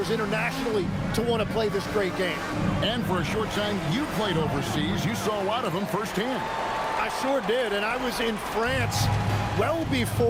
internationally to want to play this great game. And for a short time, you played overseas. You saw a lot of them firsthand. I sure did, and I was in France well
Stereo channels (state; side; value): identical; both; correlation 1.00